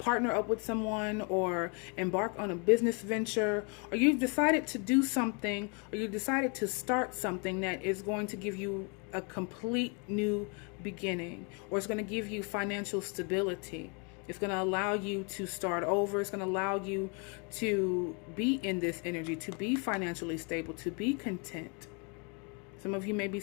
up with someone, or embark on a business venture, or you've decided to do something, or you decided to start something that is going to give you a complete new beginning, or it's going to give you financial stability. It's going to allow you to start over. It's going to allow you to be in this energy, to be financially stable, to be content. Some of you may be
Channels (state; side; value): quieter; right; 34.7 dB